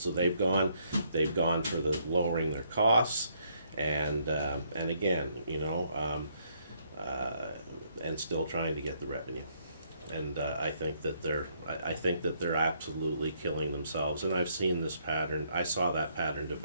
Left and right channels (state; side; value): inverted; both; correlation -0.71